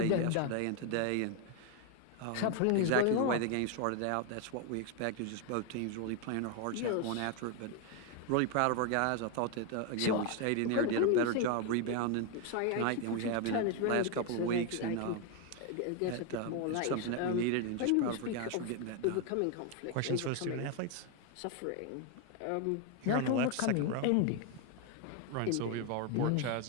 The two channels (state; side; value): different; both; correlation 0.01